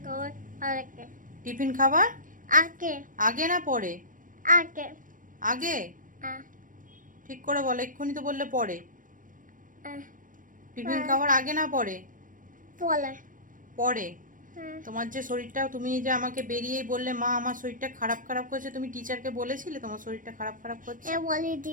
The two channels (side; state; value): left; late; 0.39 ms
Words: খাওয়ার আগে। টিফিন খাবার আগে। আগে না পরে? আগে। আগে। আহ, ঠিক করে বলো, এক্ষুনি তো বললে পরে। আহ, টিফিন আহ, খাওয়ার আগে না পরে? বলে। পরে। হ্যাঁ। তোমার যে শরীরটা, তুমি যে আমাকে বেরিয়েই বললে মা আমার শরীরটা খারাপ খারাপ করছে, তুমি টিচারকে বলেছিলে তোমার শরীরটা খারাপ খারাপ করছে? বলে